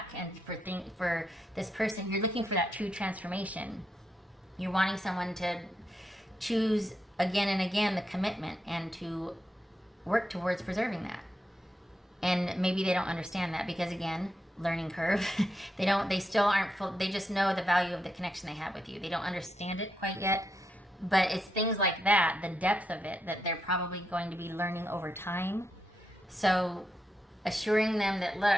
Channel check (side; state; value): both; normal; correlation 0.83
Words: And for this person, you're looking for that true transformation. You're wanting someone to choose again and again the commitment and to work towards preserving that. And maybe they don't understand that because, again, learning curve. They still aren't full. They just know the value of the connection they have with you. They don't understand it quite yet. But it's things like that, the depth of it, that they're probably going to be learning over time. So assuring them that,